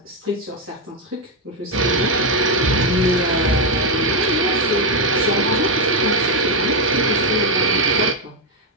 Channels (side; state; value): both; normal; correlation 0.04